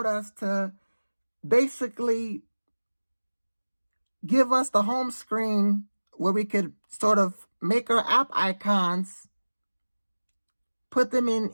us to basically give us the home screen where we could sort of make our app icons, put them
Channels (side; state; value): both; inverted; correlation -1.00